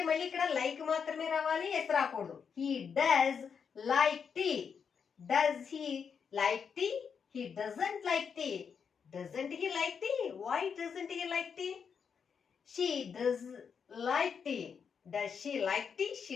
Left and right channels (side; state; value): right; quieter; 6.6 dB